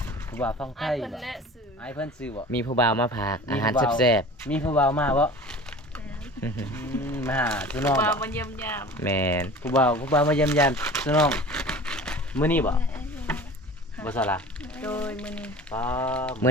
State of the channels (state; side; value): normal; both; correlation 0.40